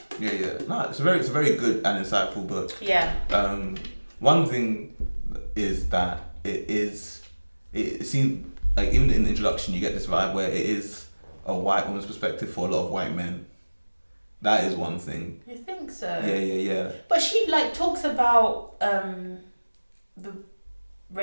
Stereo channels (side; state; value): both; inverted; correlation -1.00